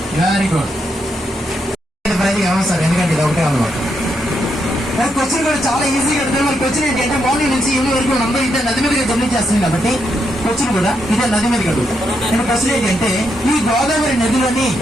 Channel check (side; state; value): both; normal; correlation 0.80